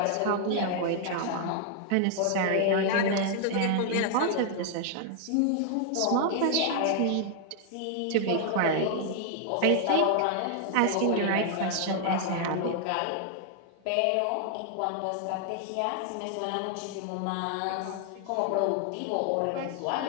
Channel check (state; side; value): different; both; correlation 0.00